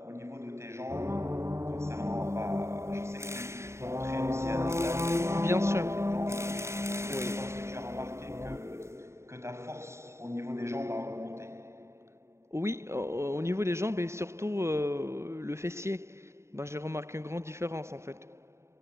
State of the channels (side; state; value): left; late; 0.13 ms